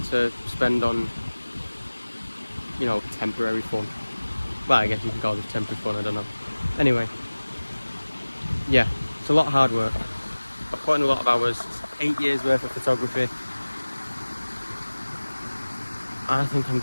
spend on, you know, temporary fun. Well, I guess you can call this temporary fun, I don't know. Anyway, yeah, it's a lot of hard work. I've put in a lot of hours. It's 8 years worth of photography. I think I'm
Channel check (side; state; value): both; inverted; correlation -1.00